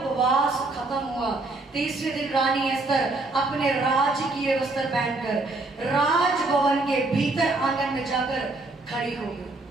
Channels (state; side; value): quieter; left; 3.1 dB